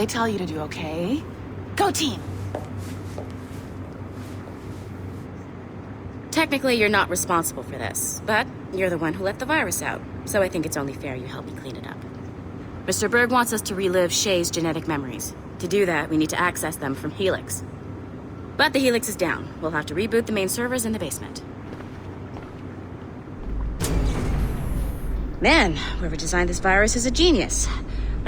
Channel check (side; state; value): both; identical; correlation 1.00